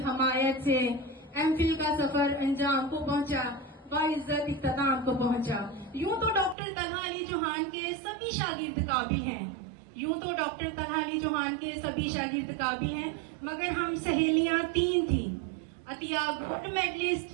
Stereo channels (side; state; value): left; drops out; at 6.6 s